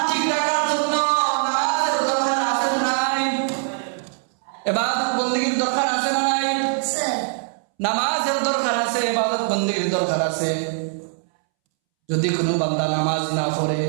ঠিক রাখার জন্য নামাজের দরকার আছে না নাই? ইবাদত বন্দেগীর দরকার আছে না নাই? নামাজের দরকার আছে, ইবাদত বন্দেগীর দরকার আছে। যদি কোনো বান্দা নামাজ না পড়ে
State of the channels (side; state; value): left; silent; 64 dB below the other